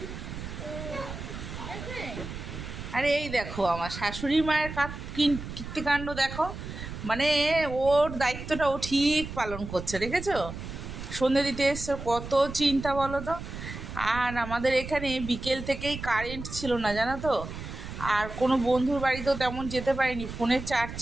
আরে এই দেখো আমার শাশুড়ি মায়ের কীর্তিকাণ্ড দেখো, মানে ওর দায়িত্বটা ও ঠিক পালন করছে, দেখেছো? সন্ধে দিতে এসছে, কত চিন্তা বলো তো। আর আমাদের এখানে বিকেল থেকেই কারেন্ট ছিল না, জানো তো। আর কোনো বন্ধুর বাড়িতেও তেমন যেতে পারিনি, ফোনের চার্জ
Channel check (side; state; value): right; noise; rumble, 9 dB below the sound